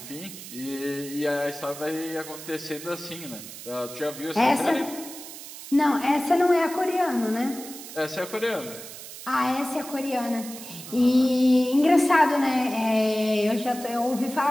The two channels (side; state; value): right; noise; hiss, 13 dB below the sound